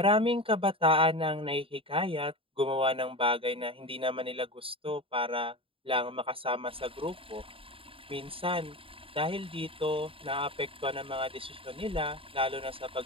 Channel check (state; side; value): late; left; 0.26 ms